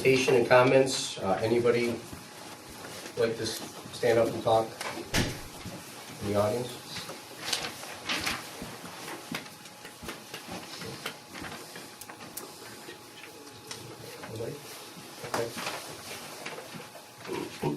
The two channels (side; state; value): both; identical; correlation 1.00